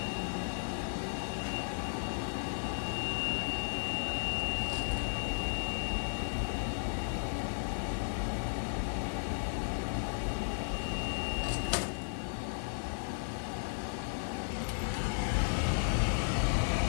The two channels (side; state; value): right; silent; digital silence